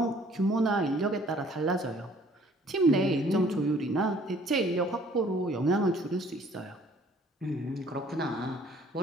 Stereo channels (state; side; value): normal; both; correlation 0.57